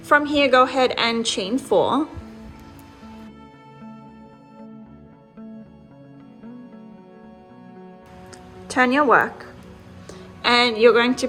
From here, go ahead and chain 4. Turn your work, and you're going to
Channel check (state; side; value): identical; both; correlation 1.00